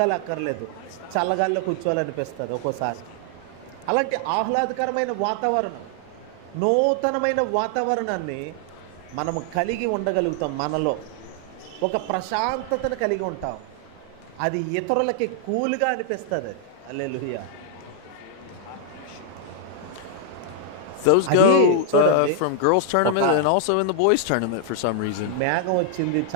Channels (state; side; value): different; both; correlation 0.00